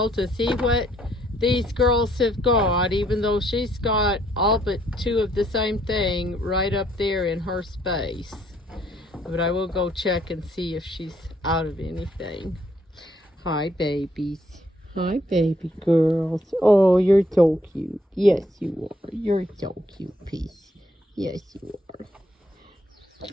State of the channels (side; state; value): both; normal; correlation 0.68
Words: to see what these girls have got, even though she's got all but two of the same thing right up there in her space. But I will go check and see if she's out of anything. Hi, babies. Hi, baby girls. Oh, you're so cute. Yes, you are. You're so cute, piece. Yes, you are.